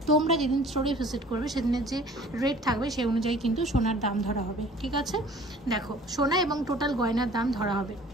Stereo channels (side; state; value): both; normal; correlation 0.49